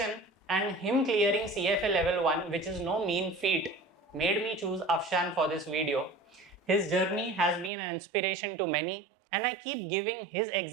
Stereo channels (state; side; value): drops out; left; at 7.7 s